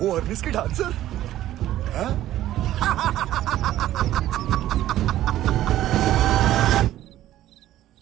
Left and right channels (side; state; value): left; quieter; 13.5 dB